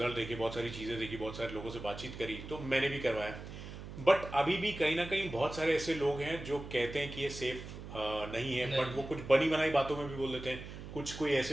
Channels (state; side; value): noise; right; hum, 11 dB below the sound